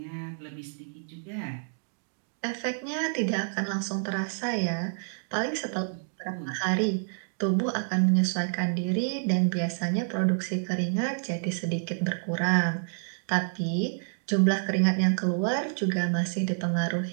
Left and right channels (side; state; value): left; silent; digital silence